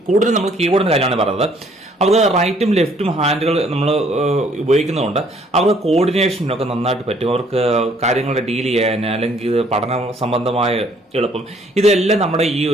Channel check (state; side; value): normal; both; correlation 0.62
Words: കീബോർഡിന്റെ കാര്യമാണ് പറയുന്നത്. അവർക്ക് റൈറ്റും ലെഫ്റ്റും ഹാൻഡുകൾ നമ്മൾ ഉപയോഗിക്കുന്നതുകൊണ്ട് അവർക്ക് കോർഡിനേഷനൊക്കെ നന്നായിട്ട് പറ്റും. അവർക്ക് കാര്യങ്ങളെ ഡീൽ ചെയ്യാൻ അല്ലെങ്കിൽ പഠന സംബന്ധമായ എളുപ്പം, ഇതെല്ലാം നമ്മുടെ ഈ